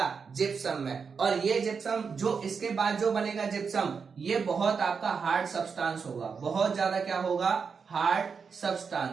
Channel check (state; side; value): quieter; left; 5.7 dB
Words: जिप्सम में। और ये जिप्सम जो इसके बाद जो बनेगा जिप्सम, ये बहुत आपका हार्ड सब्सटेंस होगा, बहुत ज्यादा क्या होगा, हार्ड